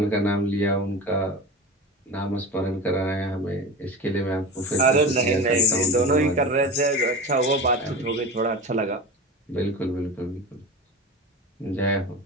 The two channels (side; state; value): both; normal; correlation 0.28